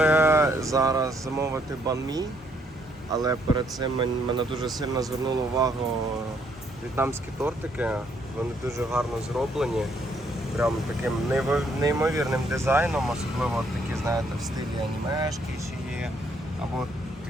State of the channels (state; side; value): normal; both; correlation 0.70